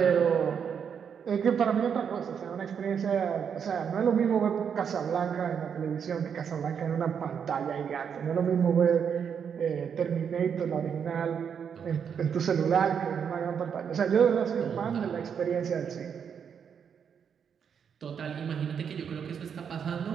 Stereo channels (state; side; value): quieter; left; 7.4 dB